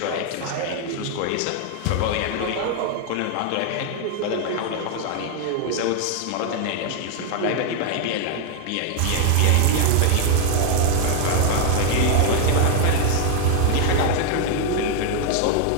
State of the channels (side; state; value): both; different; correlation 0.00